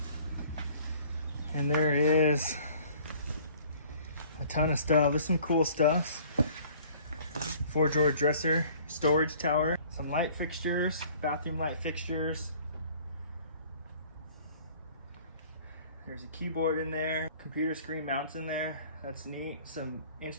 And there is a ton of stuff. There's some cool stuff. 4-drawer dresser, storage tower, some light fixtures, bathroom light fixtures. There's a keyboard in there, computer screen mounts in there. That's neat. Some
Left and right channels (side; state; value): both; inverted; correlation -0.53